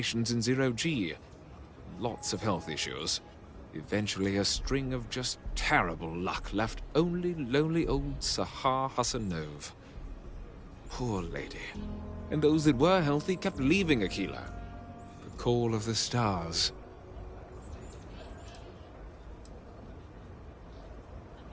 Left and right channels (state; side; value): identical; both; correlation 1.00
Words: in zero-G. Lots of health issues. Eventually, a string of just terrible luck left only lonely old Sahar Hassanove. Poor lady. And those that were healthy kept leaving Aquila. The call of the stars.